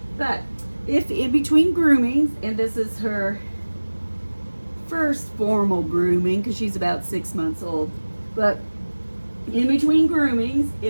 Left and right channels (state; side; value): inverted; both; correlation -1.00